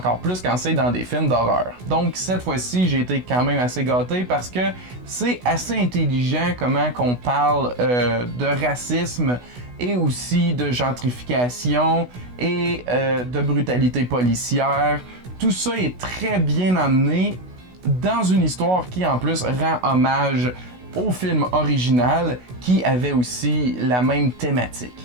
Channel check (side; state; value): left; late; 16 ms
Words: plus quand c'est dans des films d'horreur. Donc, cette fois-ci, j'ai été quand même assez gâté parce que c'est assez intelligent comment qu'on parle de racisme et aussi de gentrification et de brutalité policière. Tout ça est très bien amené dans une histoire qui en plus rend hommage au film original qui avait aussi la même thématique.